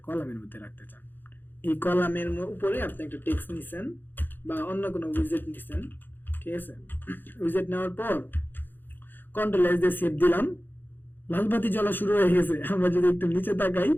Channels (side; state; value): right; late; 0.094 ms